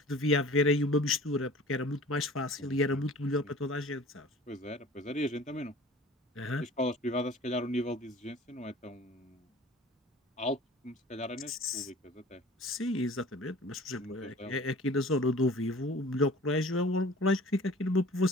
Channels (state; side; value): normal; both; correlation 0.45